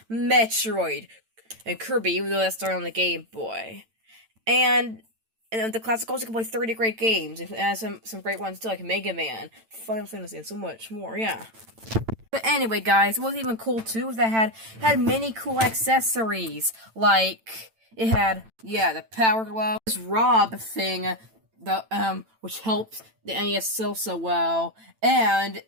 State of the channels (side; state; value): left; late; 9.0 ms